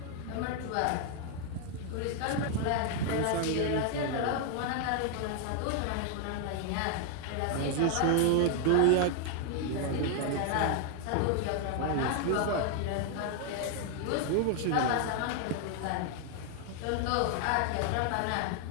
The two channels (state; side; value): different; both; correlation 0.00